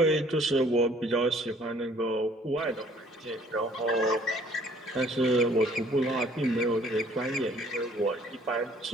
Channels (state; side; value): normal; both; correlation 0.58